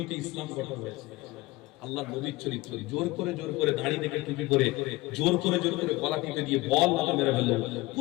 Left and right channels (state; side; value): quieter; right; 20.5 dB